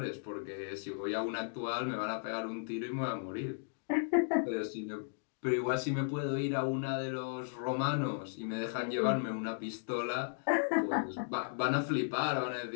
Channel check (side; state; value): right; silent; digital silence